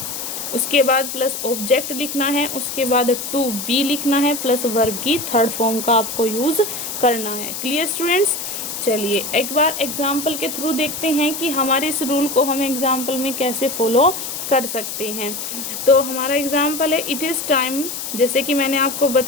उसके बाद प्लस ऑब्जेक्ट लिखना है, उसके बाद टू बी लिखना है, प्लस वर्ब की थर्ड फॉर्म का आपको यूज करना है। Clear students? चलिए एक बार एग्जाम्पल के थ्रू देखते हैं कि हमारे इस रूल को हम एग्जाम्पल में कैसे फॉलो कर सकते हैं। तो हमारा एग्जाम्पल है इट इज टाइम, जैसे कि मैंने आपको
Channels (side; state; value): left; noise; hiss, 6 dB below the sound